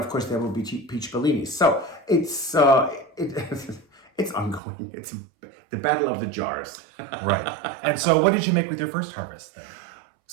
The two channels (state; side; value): drops out; left; at 4.6 s